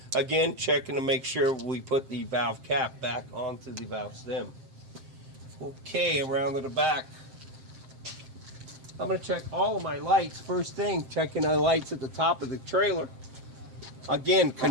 Again, checking to make sure we put the valve cap back onto the valve stem. Okay, around to the back. I'm going to check all of my lights. First thing, checking the lights at the top of the trailer. Again,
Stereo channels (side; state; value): left; late; 7.6 ms